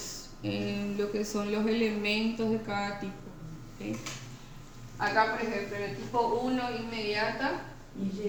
en lo que son los elementos de cada tipo. ¿Sí? Acá, por ejemplo, en el tipo 1, inmediata,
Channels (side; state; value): both; identical; correlation 1.00